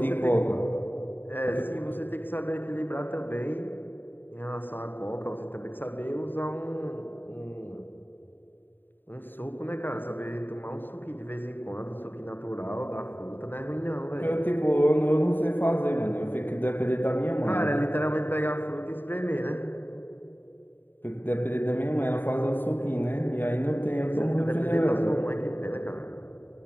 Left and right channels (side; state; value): right; late; 0.093 ms